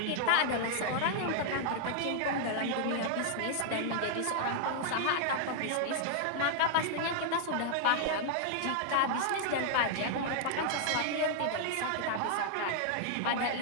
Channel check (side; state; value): both; different; correlation -0.01